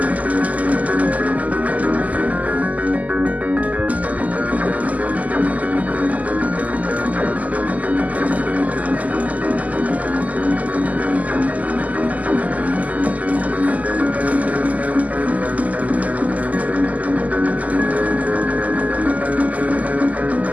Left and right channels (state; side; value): late; left; 0.076 ms